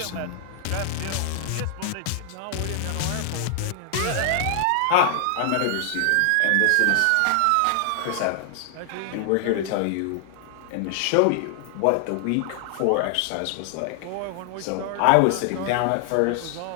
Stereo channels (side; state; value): both; different; correlation 0.00